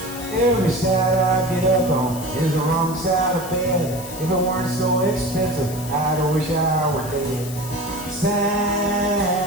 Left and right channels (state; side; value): noise; left; hiss, 13 dB below the sound